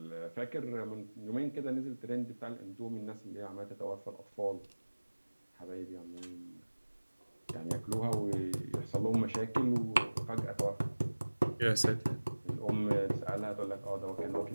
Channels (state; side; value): inverted; both; correlation -1.00